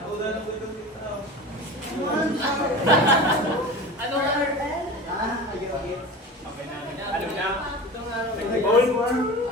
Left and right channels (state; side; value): normal; both; correlation 0.33